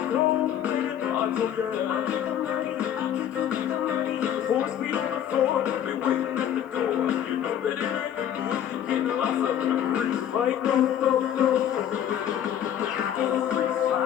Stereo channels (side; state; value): right; quieter; 10.1 dB